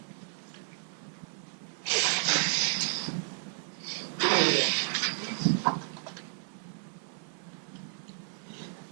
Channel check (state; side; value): silent; left; digital silence